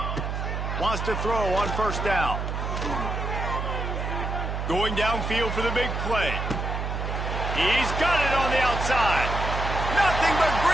Wants to throw on first down. Going downfield for the big play. He's got it on the outside. Nothing but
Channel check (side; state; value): right; noise; hum, 3 dB below the sound